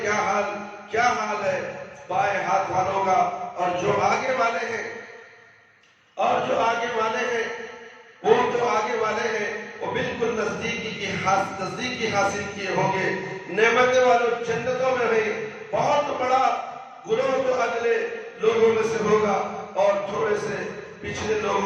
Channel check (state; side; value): identical; both; correlation 1.00